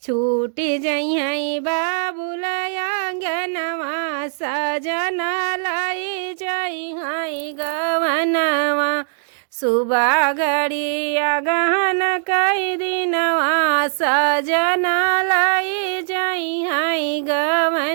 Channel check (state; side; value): silent; left; digital silence